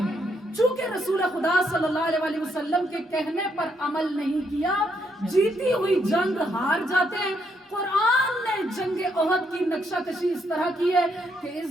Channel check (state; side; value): normal; both; correlation 0.76